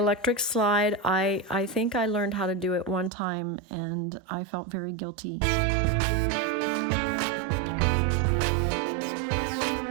slide, I think I learned how to do it one time, and I felt very guilty.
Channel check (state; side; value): drops out; left; at 3.1 s